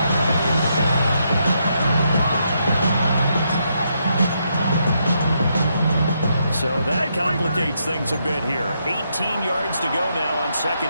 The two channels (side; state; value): both; inverted; correlation -0.78